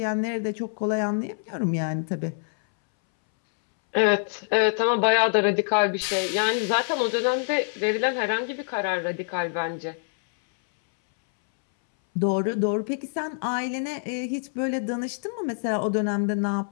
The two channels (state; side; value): silent; right; 61 dB below the other